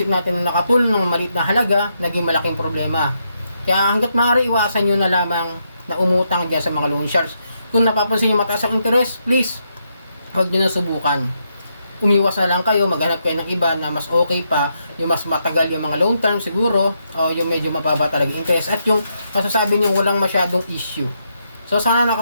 natin na nakatulong ng maliit na halaga, naging malaking problema. Kaya hanggat maaari, iwasan nyo na lamang na umutang dyan sa mga loan sharks. Kung napapansin yung mataas ang interest, please, huwag nyo na subukan. Umiwas na lang kayo, maghanap kayo ng iba na mas okay pa, yung mas matagal yung mga long term siguro, o yung medyo mababa talaga interest, at yung masasabi niyo walang masyadong issue. So sana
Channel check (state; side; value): inverted; both; correlation -0.80